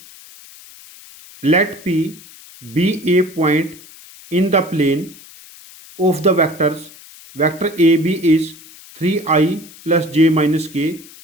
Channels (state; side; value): noise; left; hiss, 21 dB below the sound